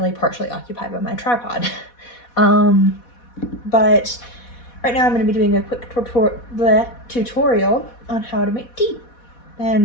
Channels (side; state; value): right; late; 4.1 ms